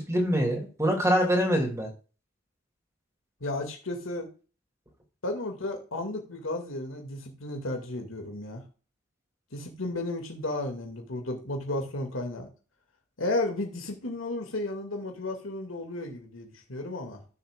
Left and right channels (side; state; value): both; normal; correlation 0.49